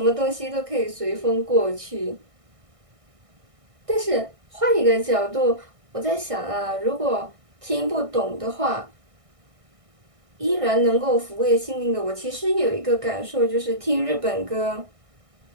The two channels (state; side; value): late; left; 1.6 ms